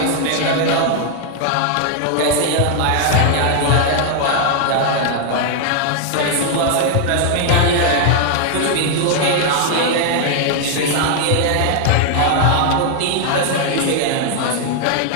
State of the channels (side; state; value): both; different; correlation 0.00